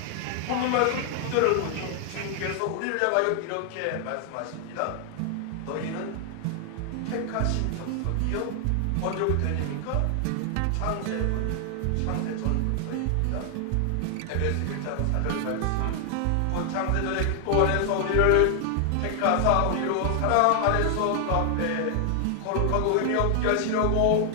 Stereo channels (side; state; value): both; different; correlation 0.00